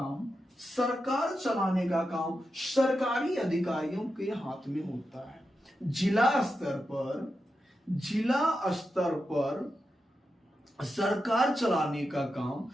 सरकारी अधिकारियों के हाथ में होता है। जिला स्तर पर सरकार चलाने का काम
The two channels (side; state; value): both; normal; correlation 0.89